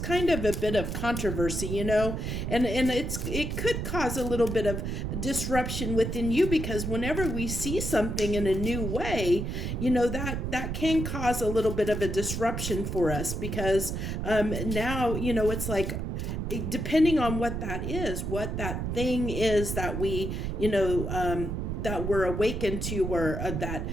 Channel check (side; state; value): right; noise; rumble, 3 dB below the sound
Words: of a bit of controversy, and it could cause a little bit of disruption within you, because whenever we see something in a new way, that can cause a little bit of a disruption for us, because now, it's like, depending on what that is, what that thing is that we, that we're awakened to, or that